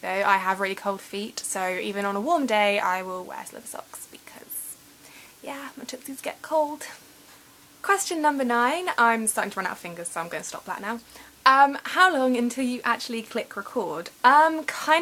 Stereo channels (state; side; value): identical; both; correlation 1.00